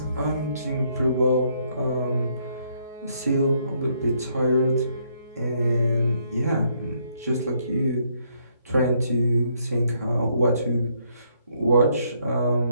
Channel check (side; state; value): both; inverted; correlation -0.71